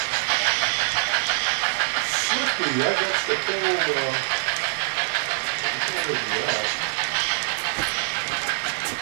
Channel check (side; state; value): left; silent; digital silence